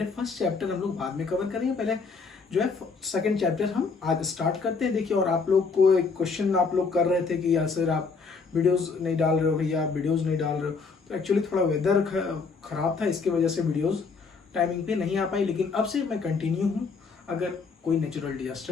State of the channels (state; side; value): quieter; right; 4.8 dB